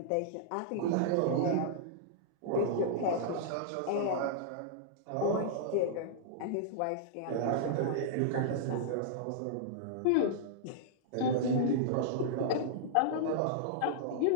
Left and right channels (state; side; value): different; both; correlation -0.02